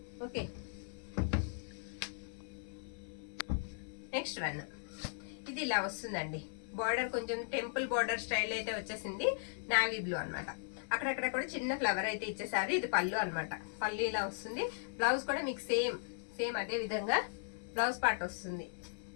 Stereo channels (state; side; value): silent; right; 53 dB below the other